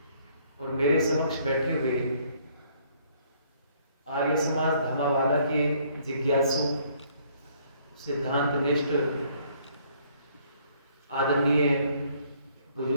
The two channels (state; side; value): inverted; both; correlation -0.64